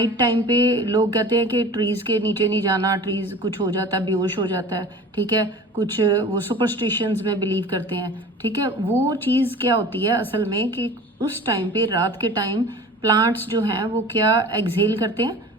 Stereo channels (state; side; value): normal; both; correlation 0.40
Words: टाइम पे लोग कहते हैं कि ट्रीज के नीचे नहीं जाना, ट्रीज कुछ हो जाता है, बेहोश हो जाता है, ठीक है, कुछ वो सुपरस्टिशंस में बिलीव करते हैं, ठीक है। वो चीज क्या होती है असल में कि उस टाइम पे, रात के टाइम, प्लांट्स जो हैं वो क्या एक्सहेल करते हैं,